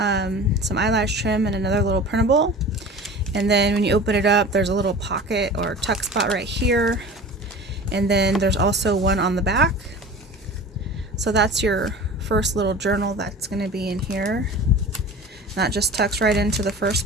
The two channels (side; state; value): both; normal; correlation 0.38